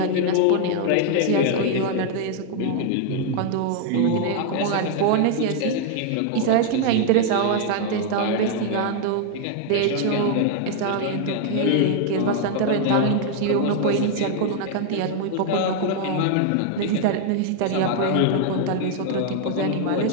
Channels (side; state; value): both; different; correlation 0.00